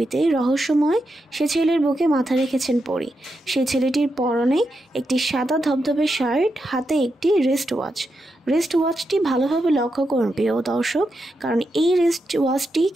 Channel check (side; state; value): both; normal; correlation 0.86